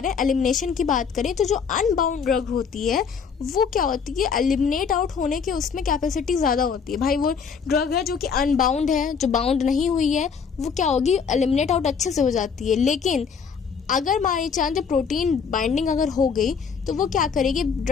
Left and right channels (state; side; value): quieter; right; 6.2 dB